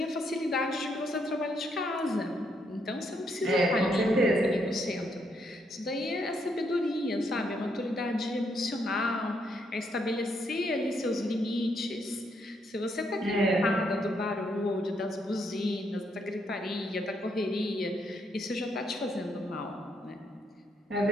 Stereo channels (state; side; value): normal; both; correlation 0.75